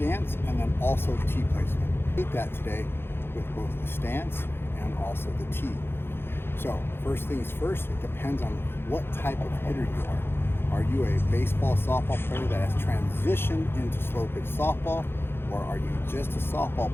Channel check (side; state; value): right; late; 0.11 ms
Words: and then also tee placement. We'll that today with both the stance and also the tee. So first things first, it depends on what type of hitter you are. Are you a baseball, softball player that has transitioned into slow pitch softball, or are you just a softball